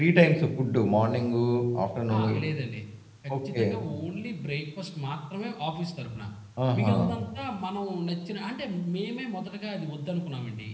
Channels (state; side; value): identical; both; correlation 1.00